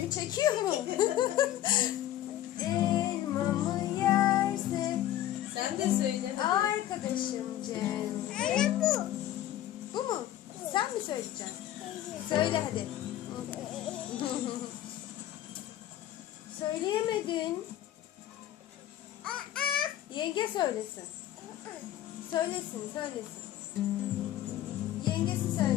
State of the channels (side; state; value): right; quieter; 12.9 dB